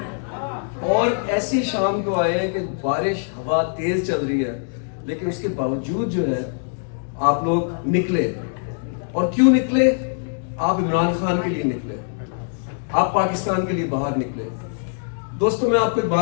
اور ایسی شام کو آئے ہیں کہ بارش ہوا تیز چل رہی ہے، لیکن اس کے باوجود جو ہے آپ لوگ نکلے. اور کیوں نکلے؟ آپ عمران خان کے لیے نکلے، آپ پاکستان کے لیے باہر نکلے. دوستوں میں آپ کو ایک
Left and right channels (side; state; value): right; silent; digital silence